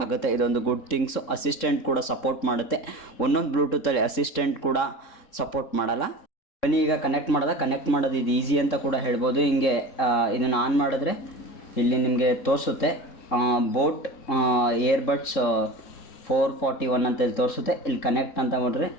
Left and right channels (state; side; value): late; right; 3.7 ms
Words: ಆಗುತ್ತೆ. ಇದೊಂದು ಗುಡ್ ಥಿಂಗ್ಸು. ಅಸಿಸ್ಟೆಂಟ್ ಕೂಡ ಸಪೋರ್ಟ್ ಮಾಡುತ್ತೆ. ಒಂದೊಂದು ಬ್ಲೂಟೂತಲ್ಲಿ ಅಸಿಸ್ಟೆಂಟ್ ಕೂಡ ಸಪೋರ್ಟ್ ಮಾಡಲ್ಲ. ಬನ್ನಿ ಈಗ ಕನೆಕ್ಟ್ ಮಾಡೋದು ಇದು ಈಸಿ ಅಂತ ಕೂಡ ಹೇಳ್ಬೋದು. ಹಿಂಗೆ ಇದನ್ನು ಆನ್ ಮಾಡಿದ್ರೆ ಇಲ್ಲಿ ನಿಮಗೆ ತೋರಿಸುತ್ತೆ ಬೋಟ್ ಏರ್ಬಡ್ಸ್ 441 ಅಂತ ಇಲ್ಲಿ ತೋರಿಸುತ್ತೆ. ಇಲ್ಲಿ ಕನೆಕ್ಟ್ ಅಂತ ನೋಡ್ರಿ,